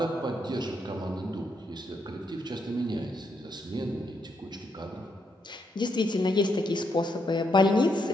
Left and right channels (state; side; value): normal; both; correlation 0.78